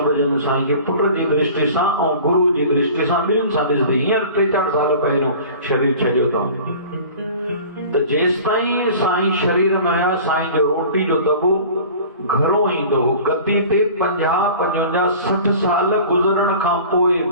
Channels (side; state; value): both; inverted; correlation -0.42